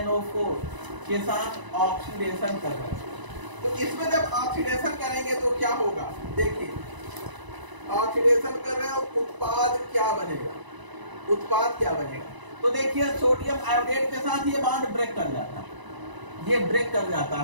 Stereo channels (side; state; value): left; late; 1.0 ms